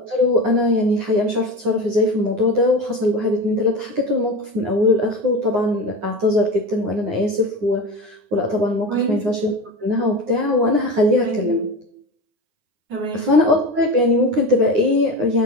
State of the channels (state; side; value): late; left; 9.6 ms